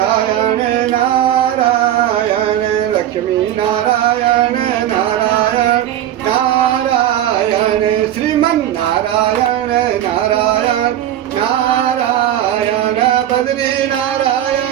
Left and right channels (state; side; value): quieter; left; 11.9 dB